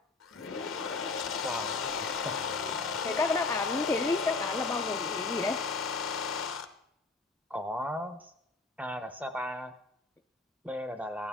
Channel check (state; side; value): quieter; right; 3.8 dB